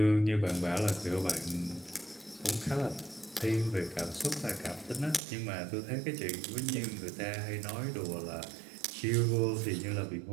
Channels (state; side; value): drops out; left; at 5.2 s